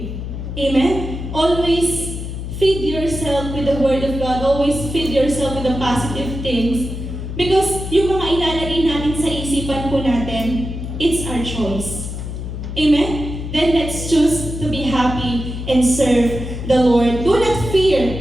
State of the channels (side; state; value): left; noise; hum, 7 dB below the sound